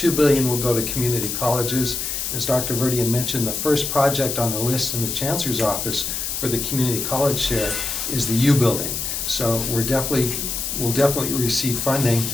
billion will go to community colleges. As Dr. Verdian mentioned, the first project on the list in the Chancellor's office for the community college share is the U building. So we'll definitely receive funding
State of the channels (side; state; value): left; noise; hiss, 3 dB below the sound